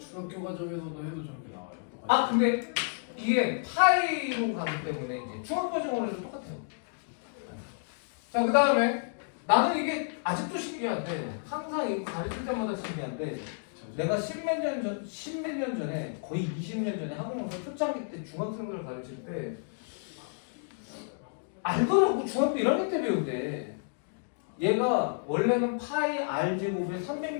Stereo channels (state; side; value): silent; right; digital silence